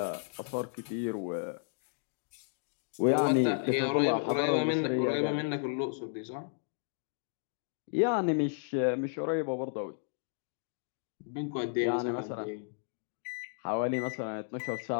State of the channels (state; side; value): silent; right; digital silence